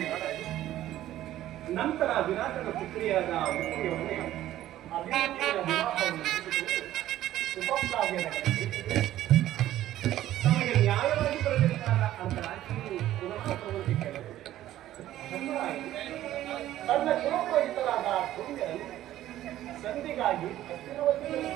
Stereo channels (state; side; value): quieter; left; 13.5 dB